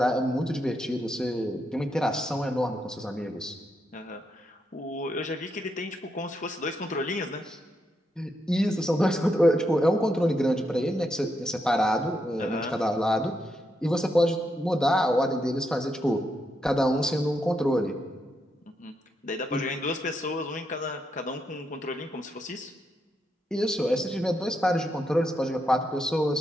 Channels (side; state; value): both; normal; correlation 0.81